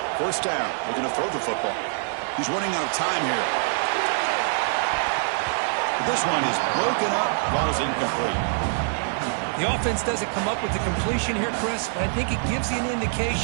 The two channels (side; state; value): left; silent; digital silence